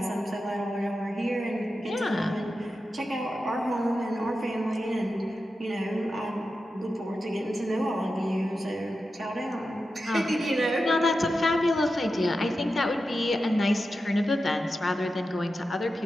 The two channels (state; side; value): normal; both; correlation 0.91